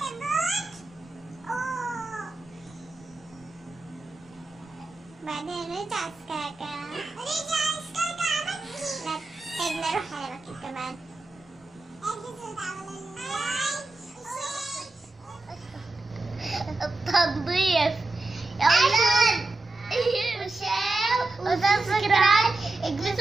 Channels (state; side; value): quieter; left; 3.1 dB